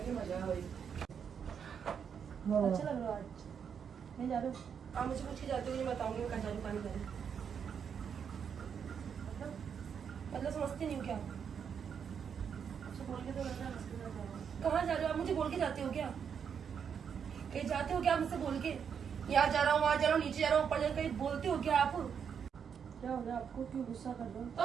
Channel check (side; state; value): left; quieter; 7.3 dB